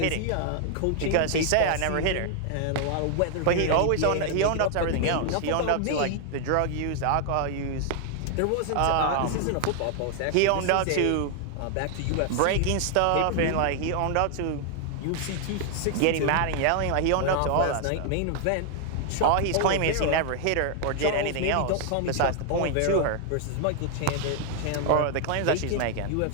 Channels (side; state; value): both; different; correlation 0.00